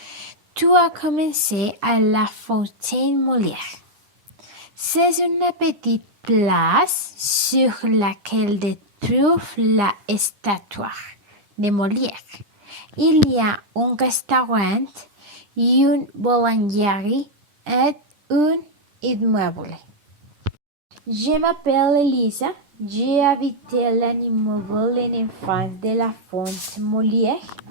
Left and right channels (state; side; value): late; left; 10 ms